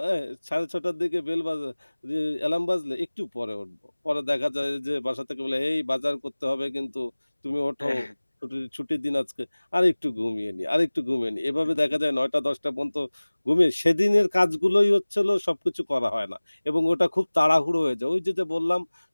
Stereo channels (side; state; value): both; inverted; correlation -1.00